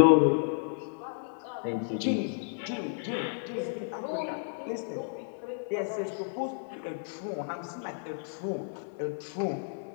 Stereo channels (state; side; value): silent; right; 57 dB below the other